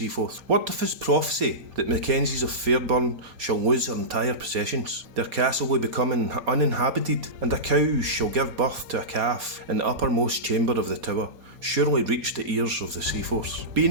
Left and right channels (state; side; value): late; left; 4.2 ms